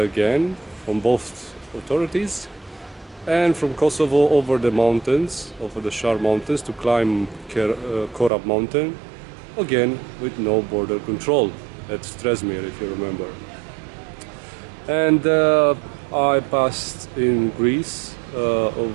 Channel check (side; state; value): left; drops out; at 8.3 s